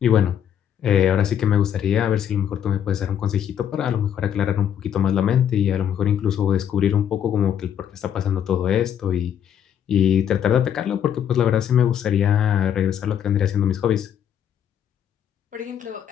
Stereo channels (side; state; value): right; quieter; 9.3 dB